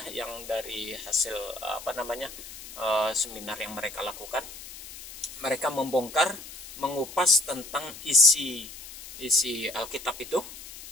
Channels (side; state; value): left; noise; hiss, 14 dB below the sound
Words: yang dari hasil seminar yang mereka lakukan. Mereka mengupas tentang isi Alkitab itu,